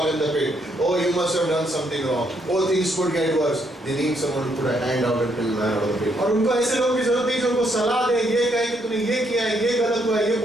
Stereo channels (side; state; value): both; normal; correlation 0.73